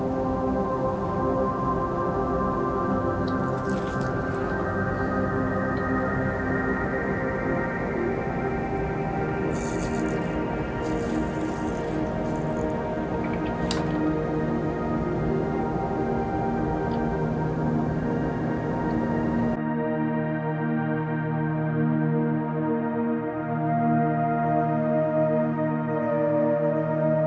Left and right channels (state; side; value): identical; both; correlation 1.00